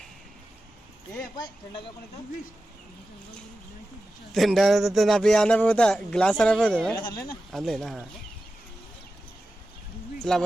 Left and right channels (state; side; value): normal; both; correlation 0.93